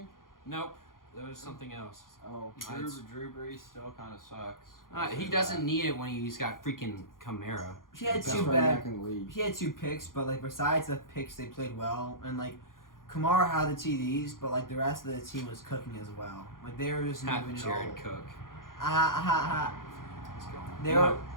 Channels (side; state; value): right; late; 0.90 ms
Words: Nope. That was something else. Oh. Drew Brees still kind of sucks. He doesn't need it when he's got freaking Kamara. He had Best two running bad. back in the league. He had 2 picks, but like besides the picks, they played well, and like Kamara had the TDs, but like the rest of the team was cooking as well. Like they were just moving it Jared all. Cook. Let's go.